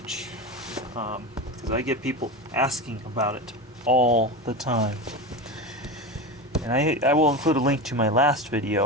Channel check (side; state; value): both; normal; correlation 0.22